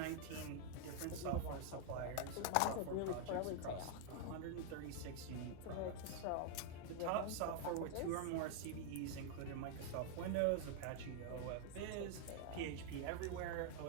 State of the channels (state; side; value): different; both; correlation 0.00